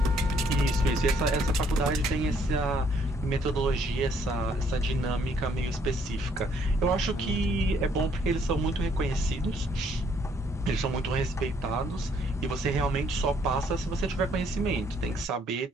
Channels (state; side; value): normal; both; correlation 0.66